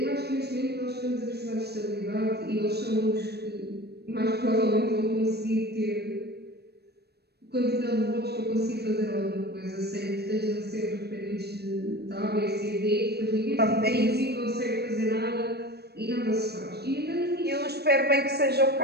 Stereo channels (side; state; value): left; late; 0.47 ms